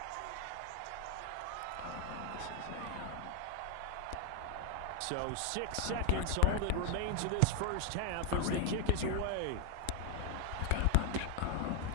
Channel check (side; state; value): both; different; correlation 0.01